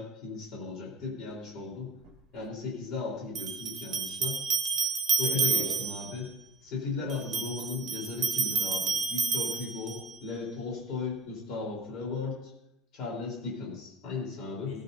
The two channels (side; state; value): both; normal; correlation 0.44